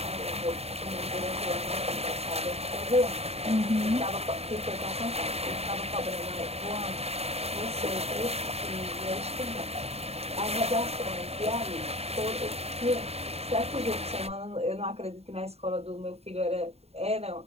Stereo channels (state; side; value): late; left; 0.30 ms